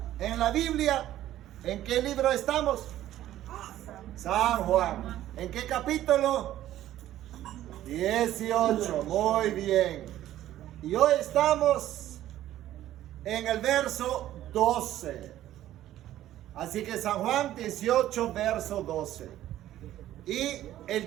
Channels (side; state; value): left; quieter; 13.2 dB